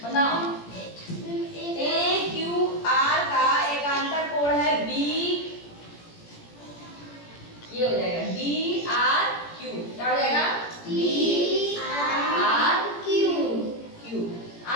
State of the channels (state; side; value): late; right; 17 ms